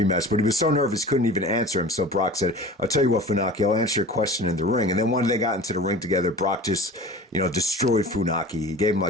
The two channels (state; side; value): normal; both; correlation 0.39